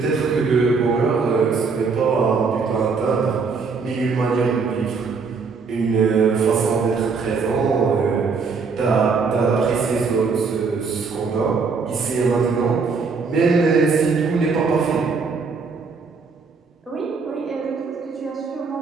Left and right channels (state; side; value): quieter; left; 4.9 dB